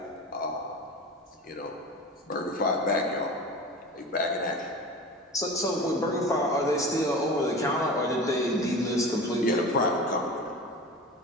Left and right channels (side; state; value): both; normal; correlation 0.34